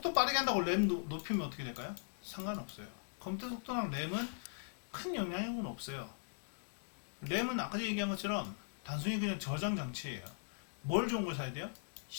빠르게 한다고 램 높이면 어떻게 될까요? 상관없어요. 컴퓨터 속도랑 램은 큰 영향력은 없어요. 램은 아까 얘기한 것처럼 단순히 그냥 저장 장치예요. 뭘 좋은 걸 사야 돼요?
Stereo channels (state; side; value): silent; right; digital silence